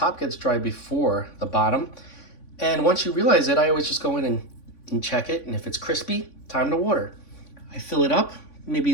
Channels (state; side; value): late; right; 3.5 ms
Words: gets dry before the bottom. And once you realize it, I always just go in and check it, and if it's crispy, time to water. I fill it up, maybe